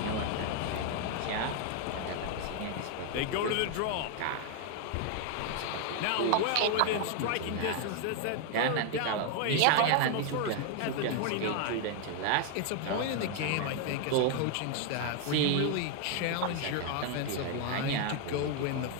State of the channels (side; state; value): both; different; correlation 0.00